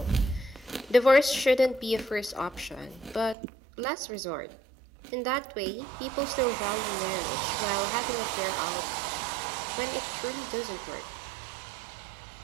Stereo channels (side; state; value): left; drops out; at 3.4 s